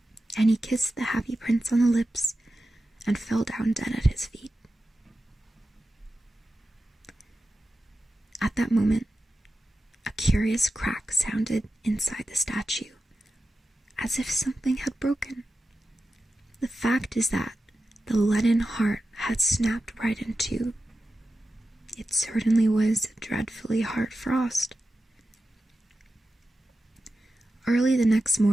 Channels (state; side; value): normal; both; correlation 0.91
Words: And he kissed the happy prince on the lips and fell down dead at his feet. At that moment, a curious crack sounded inside the statue, as if something had broken. The fact is that the leaden heart had snapped right in two. It certainly was dreadfully hard frost. Early the next